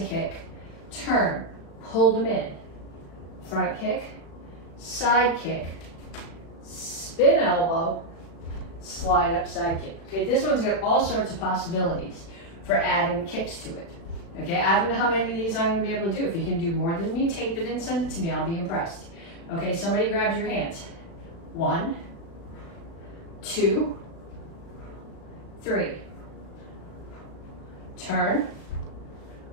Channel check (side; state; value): right; late; 36 ms